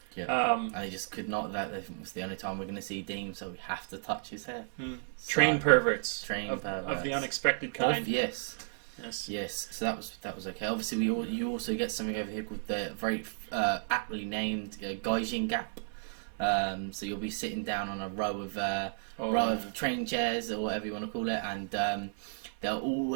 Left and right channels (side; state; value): left; silent; 56 dB below the other